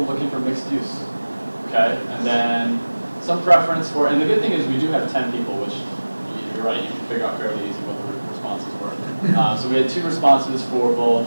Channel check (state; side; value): inverted; both; correlation -1.00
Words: looking for mixed use. Okay, and then some preference for, and the good thing is we do have 10 people, which you're right, you can figure out fairly easy what the responses were. So we had 2 responses for both